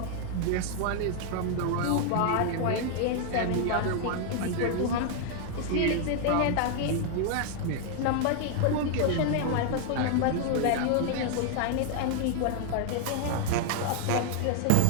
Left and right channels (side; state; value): both; different; correlation 0.00